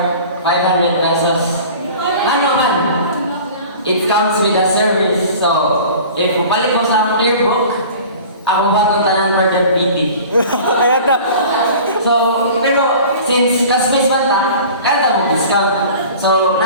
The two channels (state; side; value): inverted; both; correlation -0.42